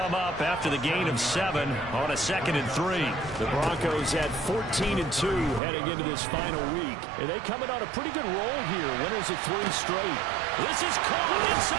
up after the gain of 7 on a 2nd and 3. The Broncos at 14 and 2 heading into this final week. And they coming on a pretty good roll here. Winners of 3 straight. This is caught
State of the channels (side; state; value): left; drops out; at 5.6 s